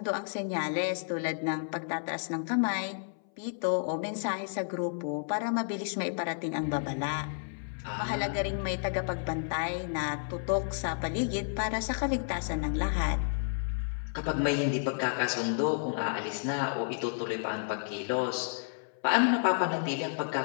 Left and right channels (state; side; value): silent; right; 57 dB below the other